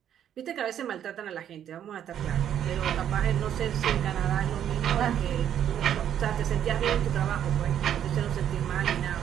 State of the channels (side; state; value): left; quieter; 9.9 dB